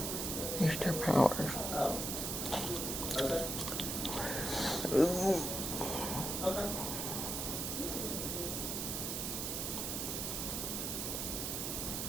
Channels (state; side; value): noise; right; hiss, 2 dB below the sound